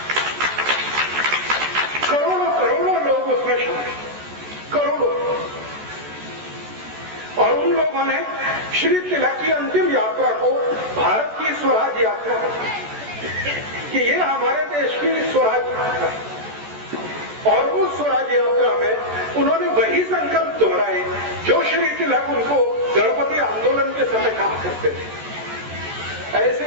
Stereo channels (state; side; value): late; left; 14 ms